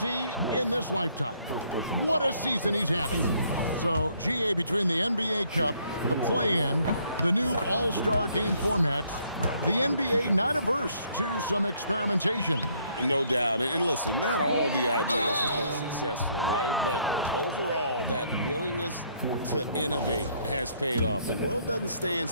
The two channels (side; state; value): both; inverted; correlation -0.67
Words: in this lifetime. What a season he's having. So, GA, between the NBA Cup, the play-in, the new All-Star game formats, the NBA not averse to some experimentation. No doubt. And listen, not all the ideas have been successful, right? But overall, that willingness to innovate has paid off. The world doesn't stand